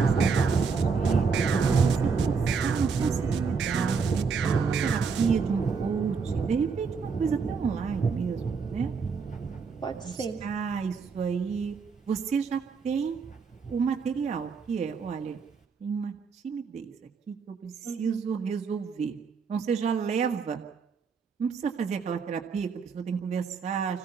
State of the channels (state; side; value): quieter; left; 5.4 dB